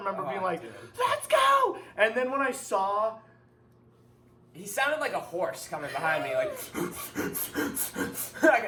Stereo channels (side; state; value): both; identical; correlation 1.00